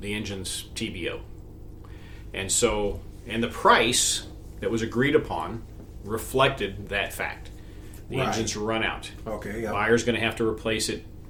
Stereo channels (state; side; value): identical; both; correlation 1.00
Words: engine's TBO, and the price that was agreed upon reflected that fact. The Right. engine's run out. Okay. Yeah. Buyer's going to have to replace it